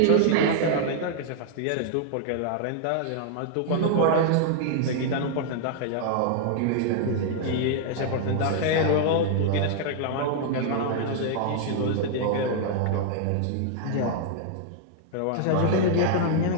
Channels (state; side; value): different; both; correlation -0.01